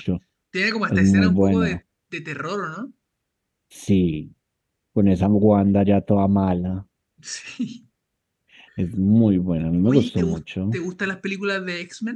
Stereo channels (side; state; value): both; identical; correlation 1.00